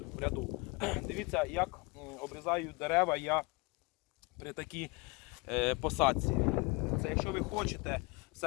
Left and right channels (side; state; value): right; quieter; 26.7 dB